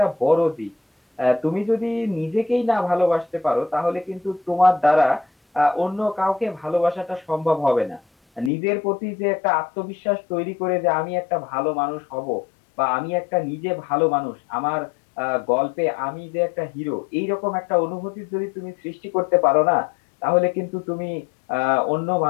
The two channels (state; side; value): drops out; right; at 8.5 s